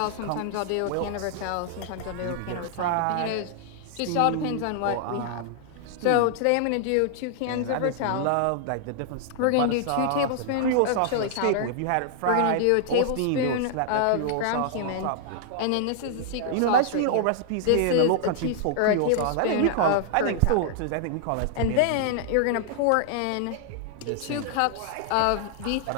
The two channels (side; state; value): both; different; correlation -0.01